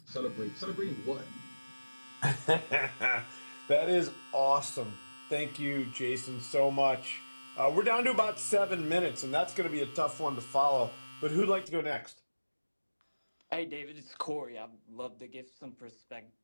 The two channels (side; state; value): both; inverted; correlation -1.00